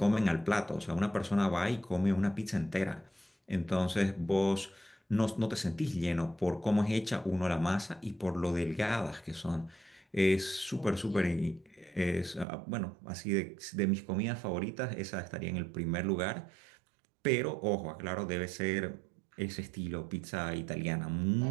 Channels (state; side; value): drops out; left; at 12.5 s